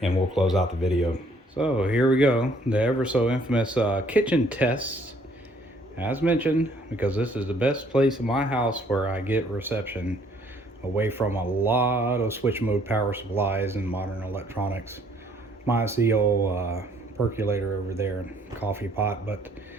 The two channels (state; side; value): normal; both; correlation 0.63